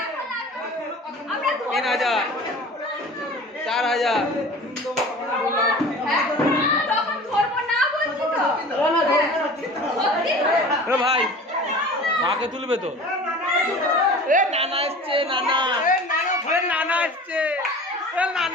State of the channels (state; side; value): normal; both; correlation 0.40